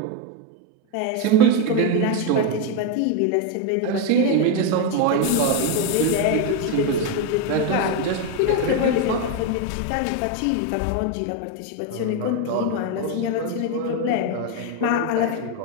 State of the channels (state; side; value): different; both; correlation 0.02